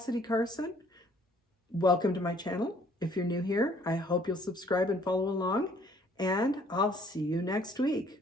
Carson. Welcome to my channel. If you're new here, I hope you'll subscribe and follow along, and I'll see you next week.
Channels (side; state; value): both; normal; correlation 0.60